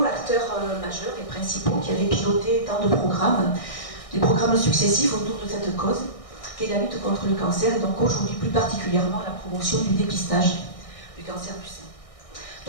acteurs majeurs et principaux qui avaient piloté tant de programmes, des programmes successifs autour de cette cause, qu'est la lutte contre le cancer, et donc aujourd'hui plus particulièrement la promotion du dépistage du cancer du sein.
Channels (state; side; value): late; right; 1.6 ms